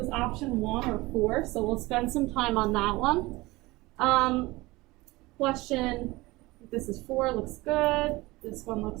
option 1 or 4, so we'll spend some time on that one. Question, this is 4, looks good. This one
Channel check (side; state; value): left; quieter; 21.0 dB